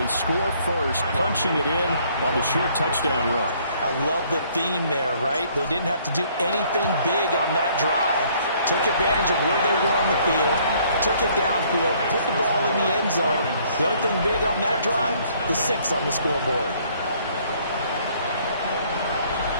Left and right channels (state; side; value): inverted; both; correlation -0.62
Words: score first, punching it in on the short touchdown run. I love the theme there, right? They didn't have to do anything big on that drive. Took advantage of where they were on the field, took it downfield, put the ball in the end zone. The only thing big on that drive, the 6 on the scoreboard.